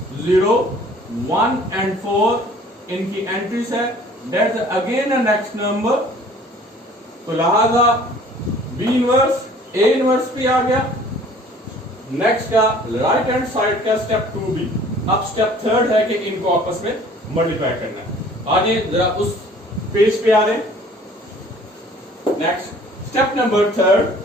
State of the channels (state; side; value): normal; both; correlation 0.52